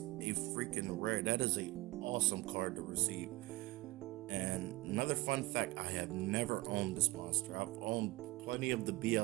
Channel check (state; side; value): quieter; left; 20.5 dB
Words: freaking rare, that is a awesome card to receive. And another fun fact, I have never owned this monster. I've owned plenty of the